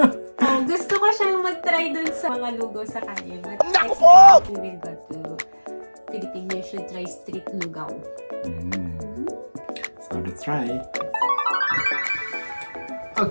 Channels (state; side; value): inverted; both; correlation -1.00